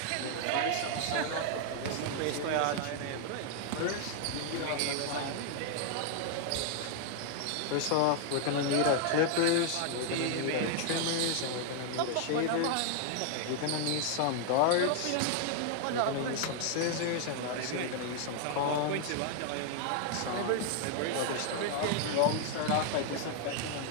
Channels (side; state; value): both; different; correlation 0.00